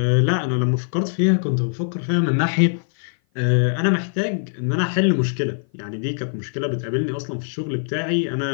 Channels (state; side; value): silent; right; 56 dB below the other